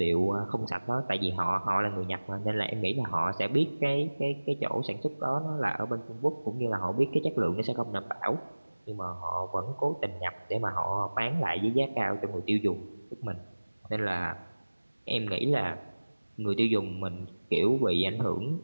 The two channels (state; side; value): inverted; both; correlation -1.00